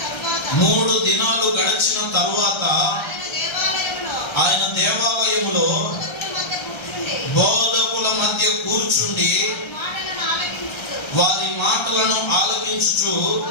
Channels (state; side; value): late; right; 1.3 ms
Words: 3 దినాలు గడిచిన తరువాత ఆయన దేవాలయములో బోధకుల మధ్య కూర్చుండి వారి మాటలను ఆలకించుచు